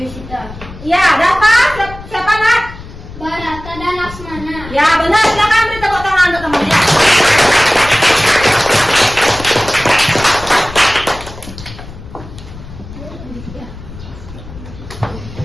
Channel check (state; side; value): noise; left; rumble, 15 dB below the sound